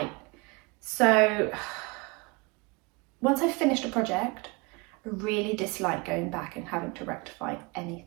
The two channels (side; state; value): left; quieter; 27.4 dB